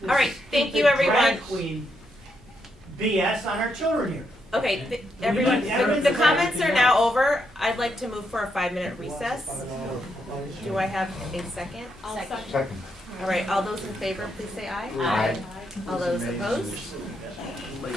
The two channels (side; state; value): both; normal; correlation 0.79